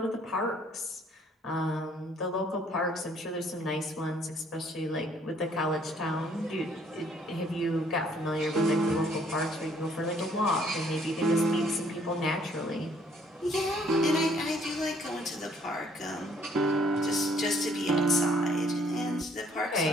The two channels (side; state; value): both; normal; correlation 0.62